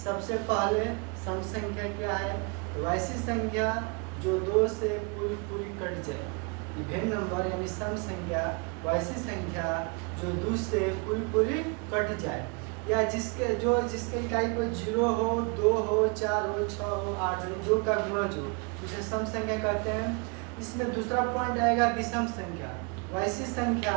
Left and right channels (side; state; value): left; quieter; 33.1 dB